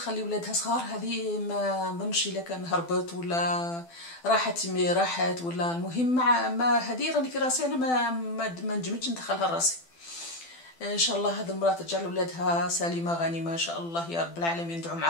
ولادها صغار، هذه ما نظنش الا كان هربت ولا راحت ولا المهم ما هذه راني في راسي انا ما نجمتش ندخلها لراسي. ان شاء الله هذه المراه ترجع لولادها سليمه غانمه ان شاء الله يا رب العالمين. ندعو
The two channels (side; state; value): right; late; 12 ms